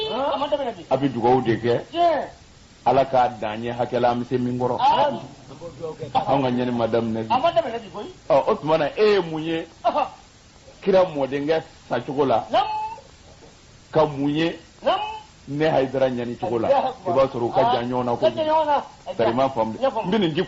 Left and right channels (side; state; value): both; identical; correlation 1.00